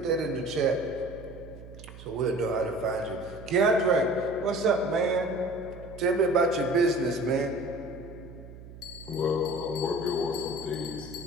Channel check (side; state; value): right; noise; hum, 16 dB below the sound